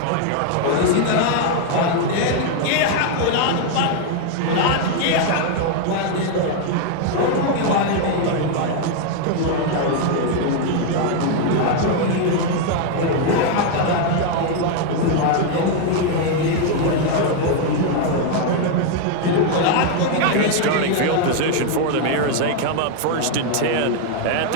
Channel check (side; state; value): both; different; correlation 0.00